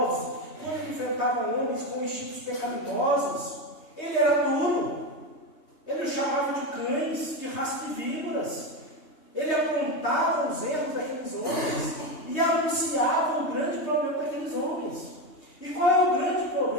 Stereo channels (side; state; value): right; late; 3.2 ms